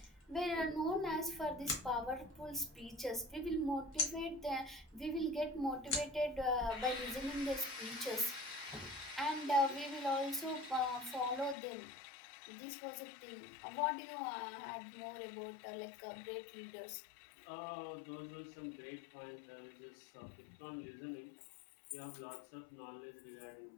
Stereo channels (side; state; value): right; drops out; at 11.6 s